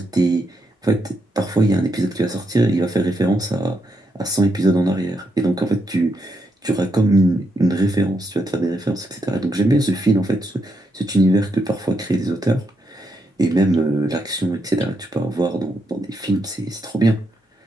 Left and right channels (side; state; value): both; normal; correlation 0.80